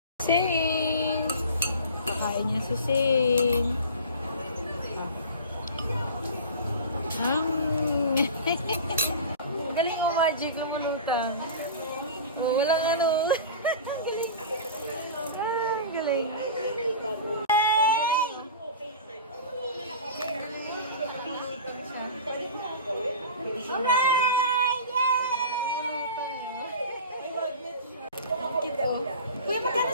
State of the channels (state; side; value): inverted; both; correlation -0.35